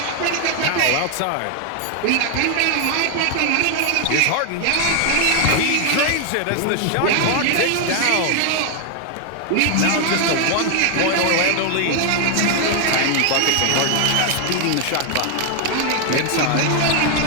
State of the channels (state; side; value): different; both; correlation 0.00